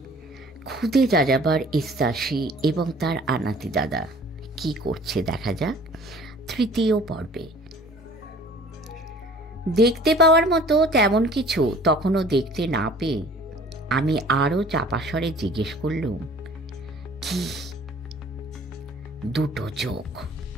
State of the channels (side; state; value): both; normal; correlation 0.50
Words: খুদে যাযাবর ইস্তাসি এবং তার আনাতি দাদা কি করছে দেখা যাক তৃতীয় পর্বে। দেখতে পাওয়ার মতো তেমন কিছু তখনও দেখতে না পেয়ে আমি আরও চাপাস্বরে জিজ্ঞেস করলুম, কি? দুটো চোখ।